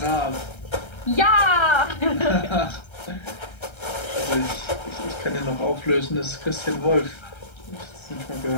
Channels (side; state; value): right; late; 1.3 ms